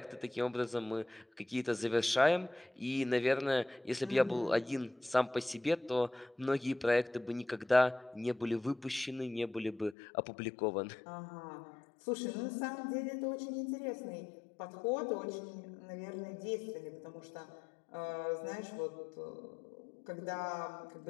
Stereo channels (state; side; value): drops out; right; at 10.0 s